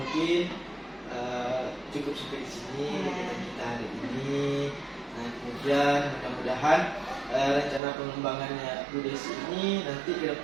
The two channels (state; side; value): drops out; left; at 7.8 s